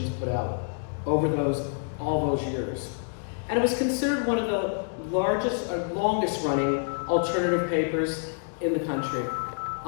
put out over all those years. And it was considered one of the largest or longest running alternative papers in the country,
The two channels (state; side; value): silent; right; digital silence